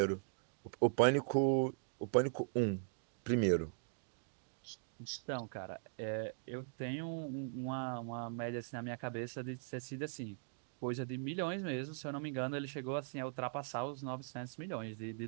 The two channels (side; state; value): left; silent; digital silence